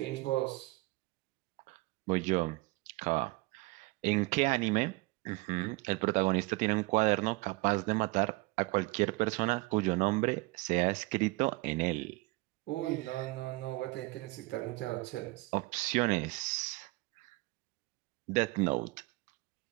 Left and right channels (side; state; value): left; quieter; 23.3 dB